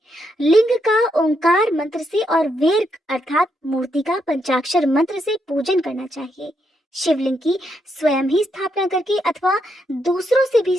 लिंग का ओंकार मंत्र से और वेर अर्थात मूर्ति का पंचाक्षर मंत्र से पूजन करना चाहिए। शिवलिंग की स्वयं ही स्थापना करके अथवा दूसरों से भी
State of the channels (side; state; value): both; normal; correlation 0.79